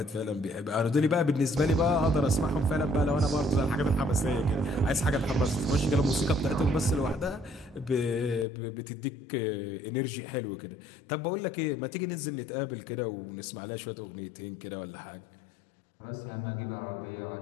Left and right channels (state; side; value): drops out; right; at 8.5 s